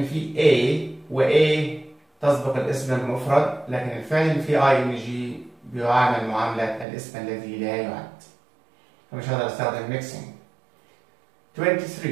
في A و A تسبق الاسم المفرد، لكن الفعل اللي في ING بيعامل معاملة الاسم الذي لا يعد، فمش هقدر استخدم mixing.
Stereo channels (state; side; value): drops out; left; at 6.9 s